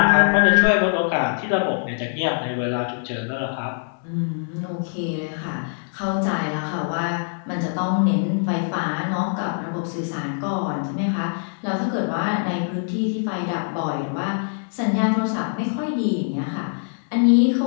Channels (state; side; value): silent; right; digital silence